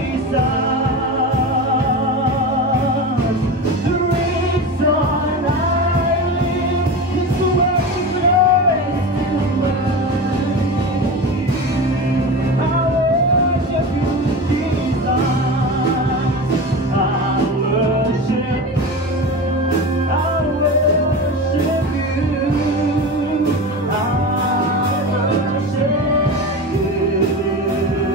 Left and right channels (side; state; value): both; normal; correlation 0.26